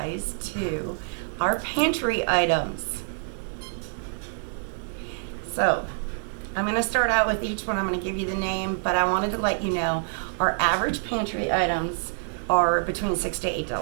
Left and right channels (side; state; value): left; silent; 61 dB below the other